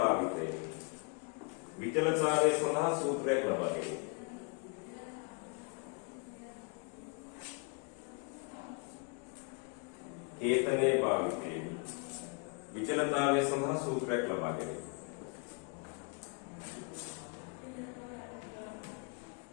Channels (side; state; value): right; quieter; 34.6 dB